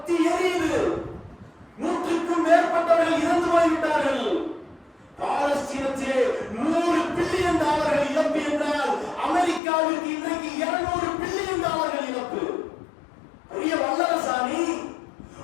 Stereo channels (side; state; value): right; drops out; at 9.6 s